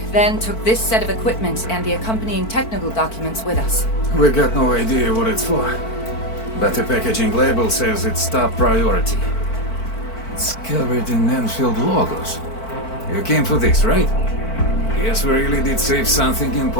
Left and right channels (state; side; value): late; right; 4.5 ms